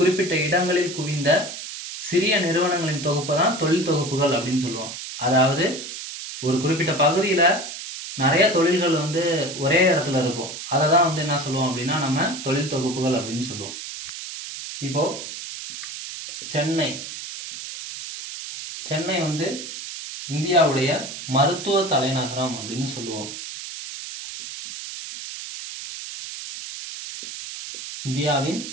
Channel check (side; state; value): right; noise; hiss, 9 dB below the sound